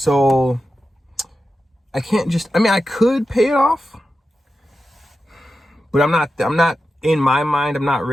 I can't just, I could pay it off. But I'm not in my mind, I'm not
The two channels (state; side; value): normal; both; correlation 0.91